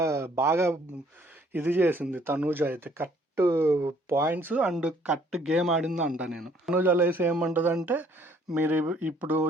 బాగా ఇది చేసింది తనూజ అయితే. Cut points and cut game ఆడింది అంట నేను. తనూజ లేసి ఏమంటుందంటే, మీరు ఇప్పుడు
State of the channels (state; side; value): normal; both; correlation 0.62